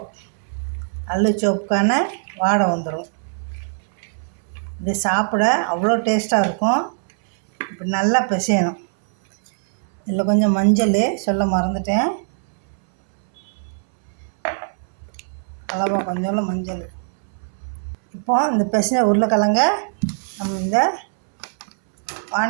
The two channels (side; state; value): left; silent; 65 dB below the other